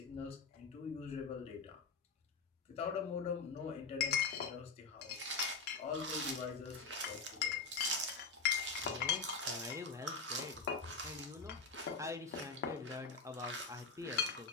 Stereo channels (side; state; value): right; quieter; 4.7 dB